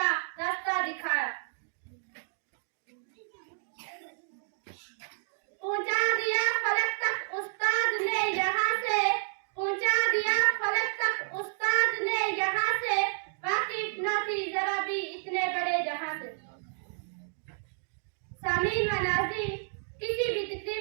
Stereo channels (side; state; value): left; silent; digital silence